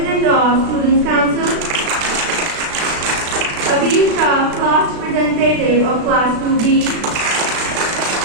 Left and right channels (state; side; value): late; left; 36 ms